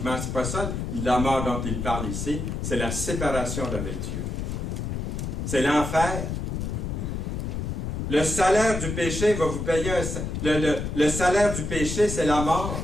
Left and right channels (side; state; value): left; noise; rumble, 3 dB below the sound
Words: C'est pas ça la mort dont il parle ici. C'est la séparation d'avec Dieu. C'est l'enfer. Le salaire du péché va vous payer le salaire du péché, c'est la